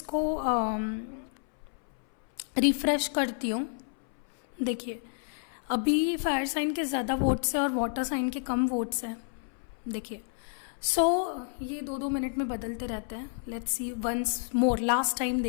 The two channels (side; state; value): right; silent; 58 dB below the other